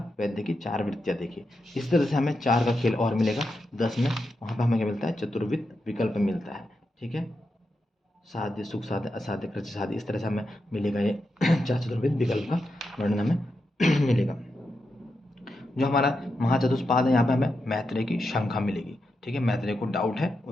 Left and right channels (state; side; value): normal; both; correlation 0.87